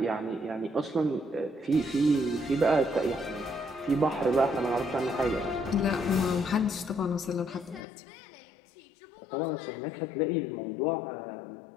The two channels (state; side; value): drops out; right; at 7.8 s